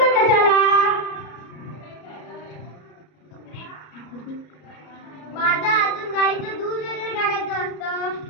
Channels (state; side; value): late; right; 33 ms